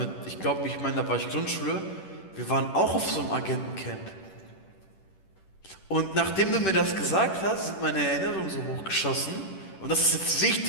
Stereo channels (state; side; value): late; right; 10 ms